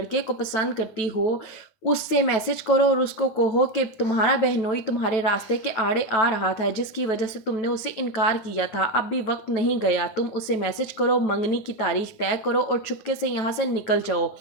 को पसंद करती हो उससे मैसेज करो और उसको कहो कि तुम्हारा बहनोई तुम्हारे रास्ते के आड़े आ रहा था जिसकी वजह से तुमने उसे इनकार किया था, अब भी वक्त नहीं गया। तुम उसे मैसेज करो, मंगनी की तारीख तय करो और चुपके से यहाँ से निकल जाओ।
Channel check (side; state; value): right; late; 9.2 ms